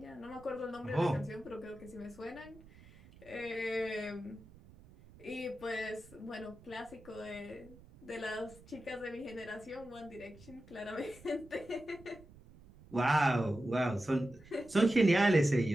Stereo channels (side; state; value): right; noise; rumble, 22 dB below the sound